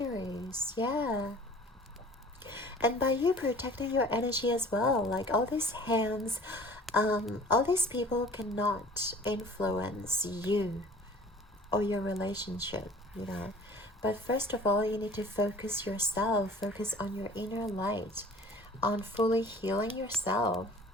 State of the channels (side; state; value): both; normal; correlation 0.47